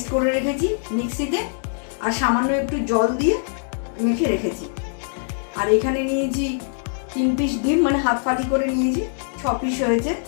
করে রেখেছি মিক্সিতে, আর সামান্য একটু জল দিয়ে মেখে রেখেছি। আর এখানে নিয়েছি 3 পিস ডিম, মানে হাফ ফালি করে নিয়েছি, 6 পিস হয়েছে।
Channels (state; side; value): silent; right; digital silence